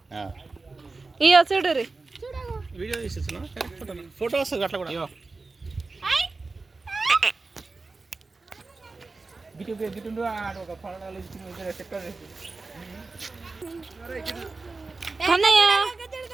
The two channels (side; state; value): left; quieter; 3.7 dB